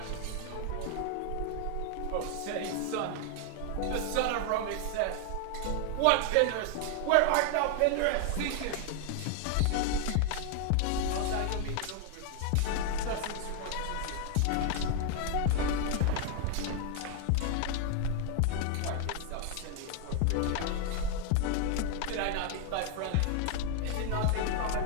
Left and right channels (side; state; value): both; different; correlation 0.00